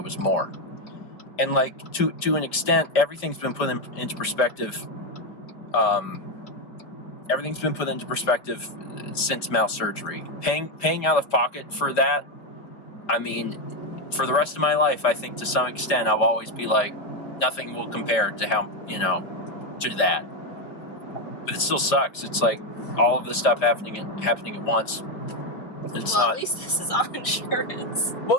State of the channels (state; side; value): late; right; 4.7 ms